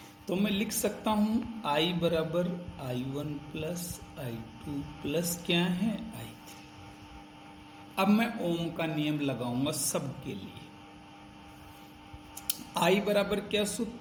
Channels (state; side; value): identical; both; correlation 1.00